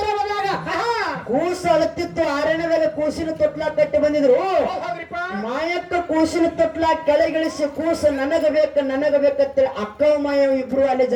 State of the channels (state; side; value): identical; both; correlation 1.00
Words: ಕೂಸು ಅಳತಿತ್ತು. ಆರಣ್ಯದಾಗ ಕೂಸಿನ ತೊಟ್ಲ ಕಟ್ಟಿ ಬಂದಿದ್ರು. ಮಾಯಕ್ಕ ಕೂಸಿನ ತೊಟ್ಲ ಕೆಳಗಿಳಿಸಿ ಕೂಸು ನನಗ ಬೇಕಂತೇಳಿ ಅಕ್ಕ ಮಾಯ ಇಬ್ರು ಅಲ್ಲಿ